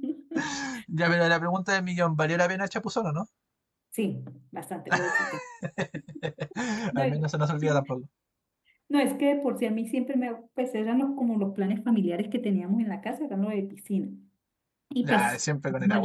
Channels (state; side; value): identical; both; correlation 1.00